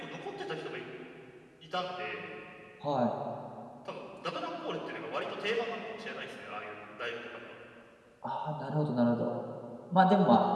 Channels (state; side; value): identical; both; correlation 1.00